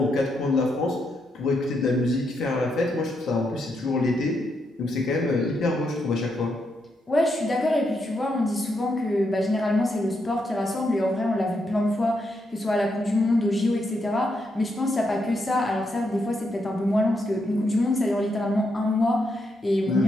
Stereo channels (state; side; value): normal; both; correlation 0.81